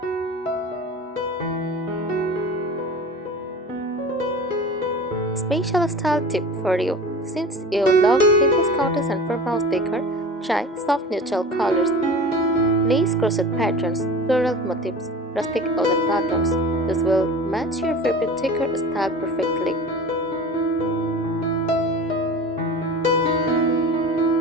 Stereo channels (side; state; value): both; normal; correlation 0.36